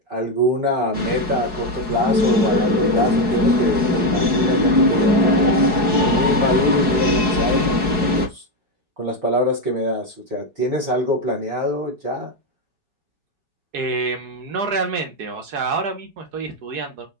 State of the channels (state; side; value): late; left; 4.7 ms